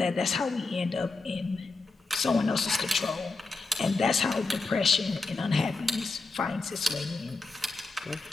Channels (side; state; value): right; quieter; 3.7 dB